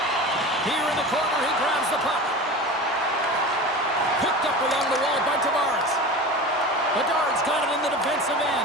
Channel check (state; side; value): normal; both; correlation 0.32